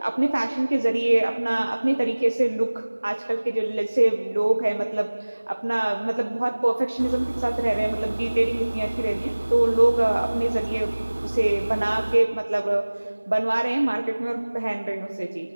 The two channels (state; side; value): inverted; both; correlation -1.00